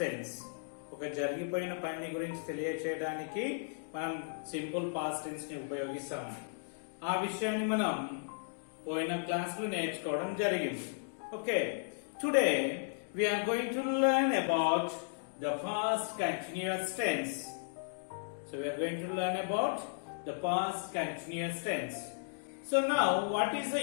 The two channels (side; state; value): right; silent; digital silence